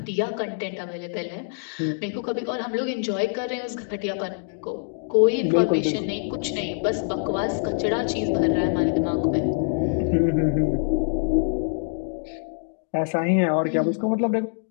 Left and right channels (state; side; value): silent; right; digital silence